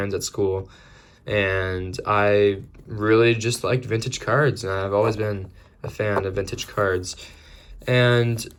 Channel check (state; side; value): identical; both; correlation 1.00